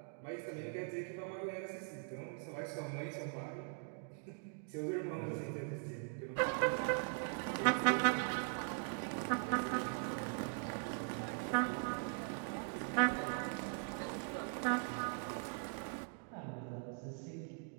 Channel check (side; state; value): left; silent; 50 dB below the other